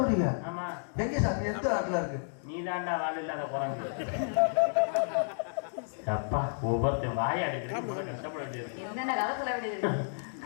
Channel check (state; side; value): silent; right; digital silence